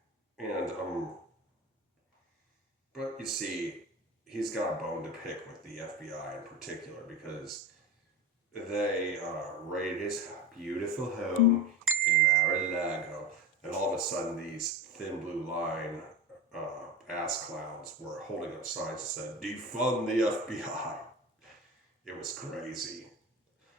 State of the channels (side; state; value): both; normal; correlation 0.27